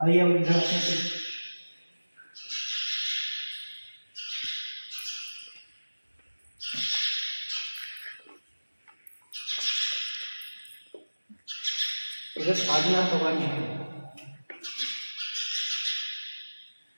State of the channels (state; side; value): inverted; both; correlation -1.00